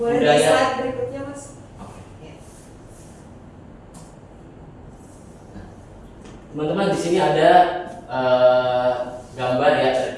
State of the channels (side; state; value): both; identical; correlation 1.00